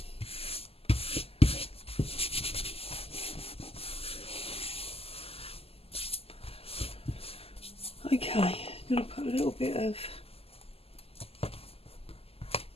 Okay, I'm going to put a little bit of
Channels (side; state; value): right; late; 0.29 ms